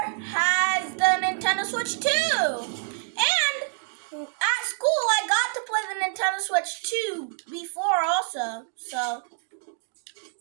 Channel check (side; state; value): left; silent; digital silence